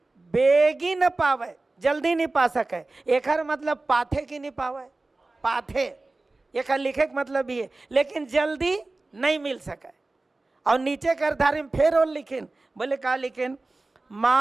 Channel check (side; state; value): left; quieter; 3.2 dB